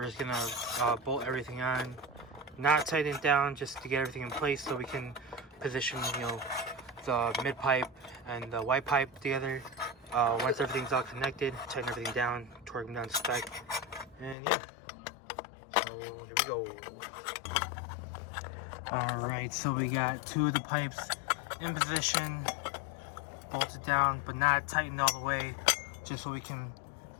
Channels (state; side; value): drops out; right; at 14.4 s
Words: just gonna bolt everything on, not tighten it down, just to get everything in place so we can position, you know, the mid pipe and the white pipe together. Once everything's all connected, tighten everything down, torque them down to spec, and yeah. So here we go. Alright, so we got two of the pipes in position, bolted down, but not tightened all the way, just so we can,